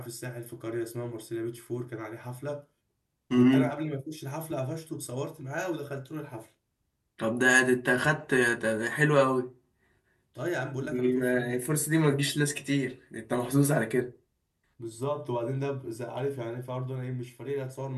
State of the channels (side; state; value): both; identical; correlation 1.00